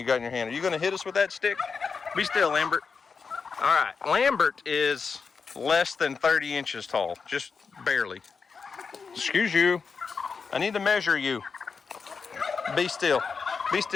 got in your hand? Are you going to hit us with that stick? Be still, Lambert. All right, Lambert is less than 30 inches tall, just barely. Excuse you. I need to measure you. Be still. Be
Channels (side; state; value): right; quieter; 5.3 dB